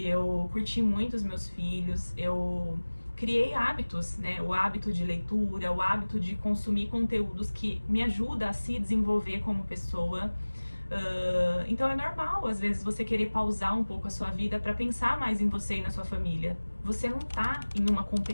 curti muito os meus filhos, eu criei hábitos, né? O hábito de leitura, o hábito de consumir conteúdos que me ajudam a se desenvolver como pessoa. Então é normal, às vezes, você querer pausar um pouco a sua vida para pensar mais em você e na sua família. Você não tá em uma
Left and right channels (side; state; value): both; inverted; correlation -1.00